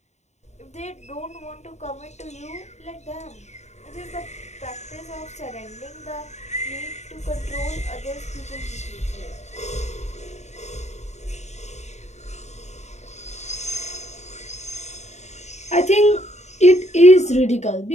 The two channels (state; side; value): late; right; 0.33 ms